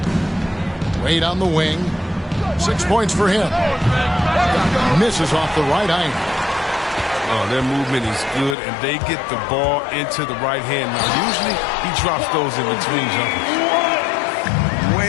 Wade on the wing. 6 points for him. Misses off the right iron. Oh, their movement is good, and they get the ball into the right hand. Now, usually he drops those in between jumpers.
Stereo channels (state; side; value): drops out; right; at 8.6 s